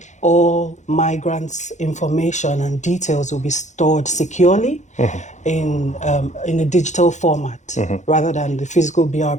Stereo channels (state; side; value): late; right; 0.34 ms